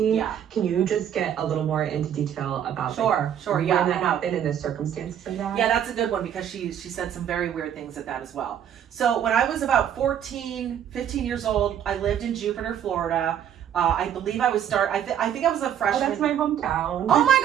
Yeah. Can you just get a little more into detail about Sure, yeah. when that happened and the circumstances of that? Yeah, that's a good one, because she said some very weird things at that as well. So when I was about 14, 15 years old, I lived in Jupiter, Florida. I believe I was I think I was a freshman. Oh, that's my hometown. Oh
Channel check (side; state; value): left; quieter; 9.5 dB